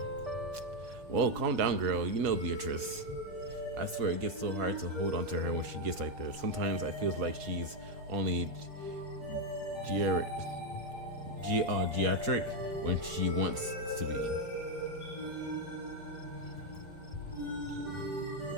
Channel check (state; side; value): late; left; 5.1 ms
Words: Whoa, calm down, girl. You know Beatrice. I swear it gets so hard to hold on to her when she gets like this. Sometimes I feel like she's only geriatric when she wants to be.